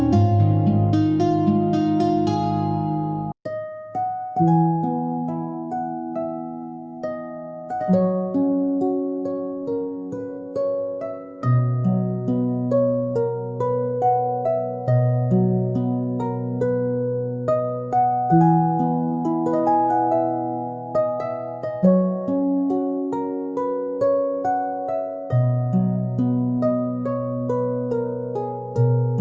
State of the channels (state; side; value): identical; both; correlation 1.00